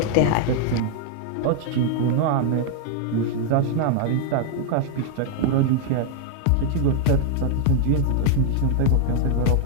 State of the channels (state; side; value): different; both; correlation 0.00